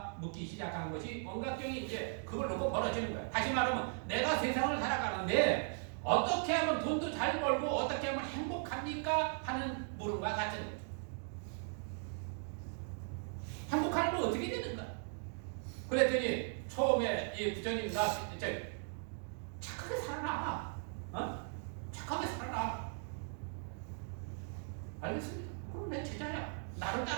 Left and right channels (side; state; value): left; silent; 52 dB below the other